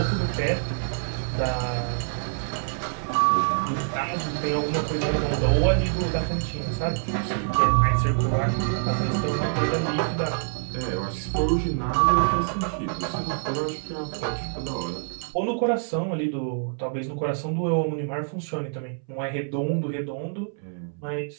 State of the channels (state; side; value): silent; left; 61 dB below the other